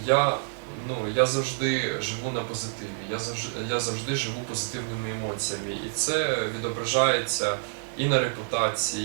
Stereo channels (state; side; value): silent; left; digital silence